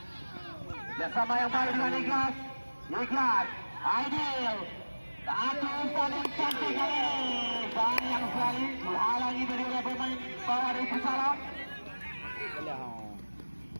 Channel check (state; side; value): inverted; both; correlation -1.00